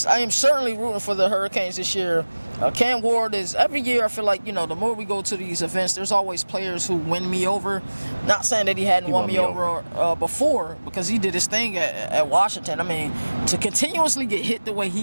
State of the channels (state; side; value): inverted; both; correlation -1.00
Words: I am certainly rooting for the Hurricanes this year. Cam Ward is, every year I feel like, the more we go to these events, there's always players who win me over. Not saying that he hadn't won me over before, because he did his thing at Washington. I mean, to continuously get hit the way